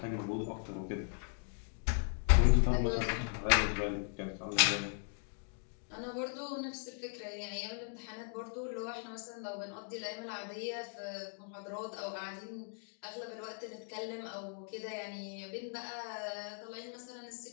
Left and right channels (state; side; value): silent; right; 52 dB below the other